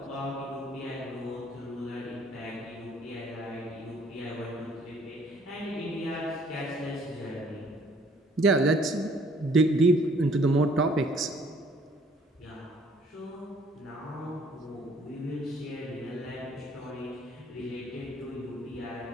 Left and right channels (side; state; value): both; normal; correlation 0.60